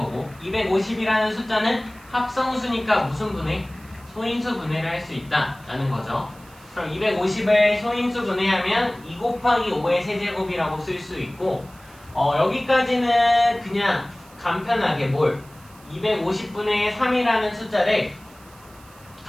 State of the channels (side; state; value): right; noise; hiss, 25 dB below the sound